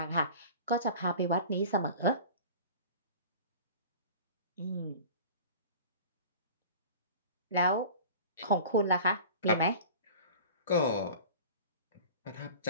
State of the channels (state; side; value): inverted; both; correlation -0.38